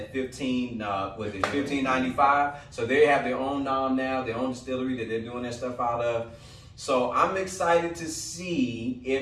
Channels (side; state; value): both; identical; correlation 1.00